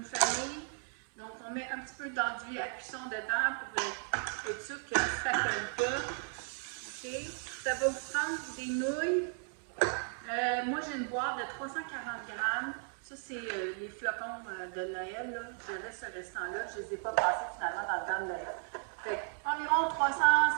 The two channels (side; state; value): left; silent; 54 dB below the other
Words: famille. Donc, on met un petit peu d'enduit à cuisson dedans pour être sûr que ça ne colle pas. Okay. Ça va vous prendre des nouilles. Moi, j'ai une boîte de 340 grammes. Ça, c'est les flocons de Noël. J'avais ce restant-là. Je ne les ai pas passés finalement dans le temps de Noël. Fait environ